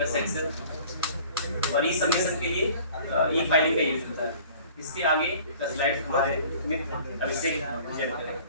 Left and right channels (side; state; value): both; inverted; correlation -0.48